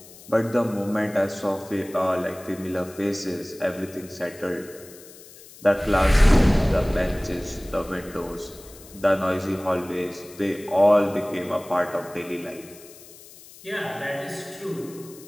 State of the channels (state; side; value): noise; left; hiss, 20 dB below the sound